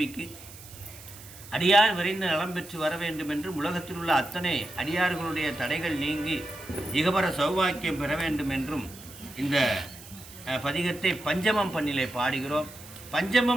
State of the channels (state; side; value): noise; right; hiss, 17 dB below the sound